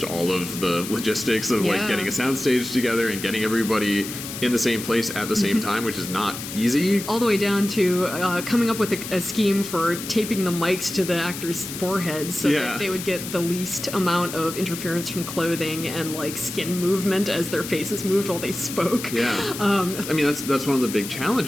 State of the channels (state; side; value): noise; left; hiss, 9 dB below the sound